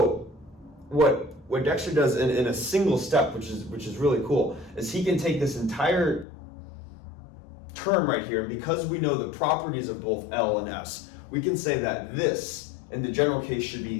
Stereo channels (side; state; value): right; drops out; at 6.2 s